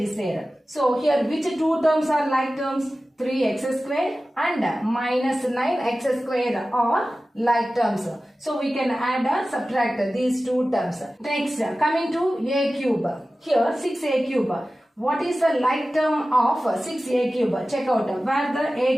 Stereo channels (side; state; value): both; normal; correlation 0.95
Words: there. So here which two terms are like terms? 3x square and minus 9x square are like terms. So we can add or subtract these two terms. Next, coming to a cube. Here 6a cube. What is the like term of 6a cube? Check out where the